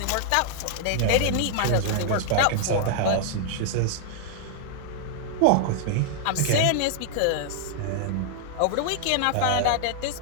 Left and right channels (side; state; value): both; different; correlation 0.00